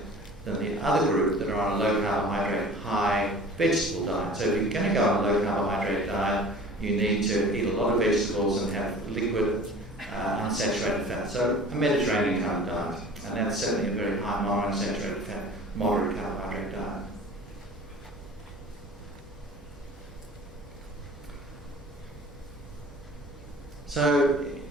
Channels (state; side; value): normal; both; correlation 0.43